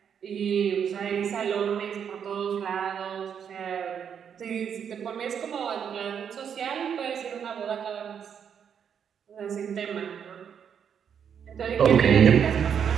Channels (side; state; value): left; quieter; 7.8 dB